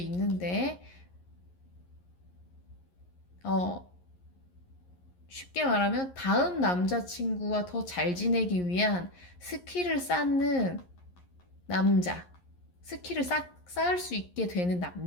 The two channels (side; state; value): right; late; 11 ms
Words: 어 쉽게 말하면 다음 남자친구와 더 잘 지내기 위한 스킬을 쌓는 남자, 스킬을 쌓을 수 있게 되는